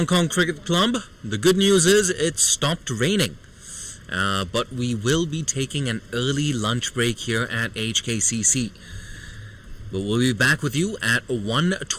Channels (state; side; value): identical; both; correlation 1.00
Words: Kong Cricket Club. The good news is it stopped raining. But we will be taking an early lunch break here at HKCC. But we'll be back with you at